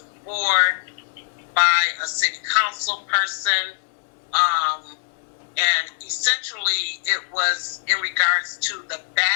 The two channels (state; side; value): silent; right; 64 dB below the other